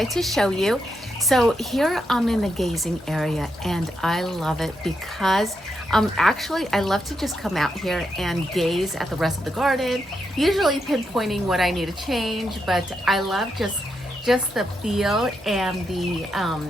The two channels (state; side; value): normal; both; correlation 0.82